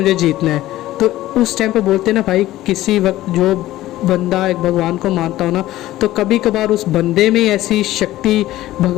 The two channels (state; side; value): quieter; right; 15.4 dB